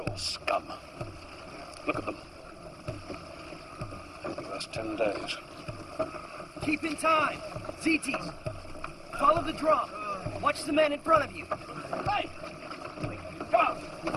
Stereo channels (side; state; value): both; identical; correlation 1.00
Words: Scum. Look at them. They'll give us 10 days. Keep in time! Zetes! Follow the drum! Watch the man in front of you! Hey! Go!